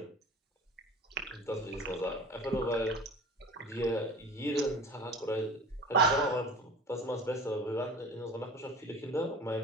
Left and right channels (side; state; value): both; normal; correlation 0.39